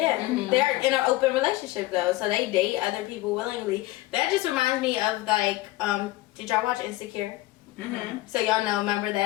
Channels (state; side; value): quieter; right; 18.0 dB